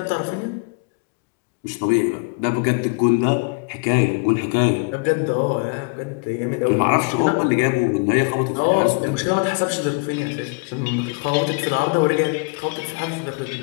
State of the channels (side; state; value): right; quieter; 31.6 dB